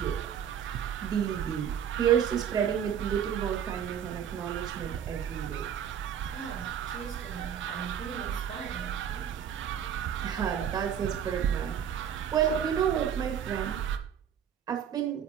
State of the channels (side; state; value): left; quieter; 8.7 dB